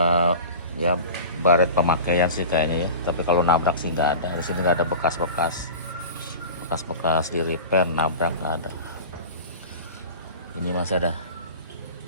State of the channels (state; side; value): inverted; both; correlation -0.35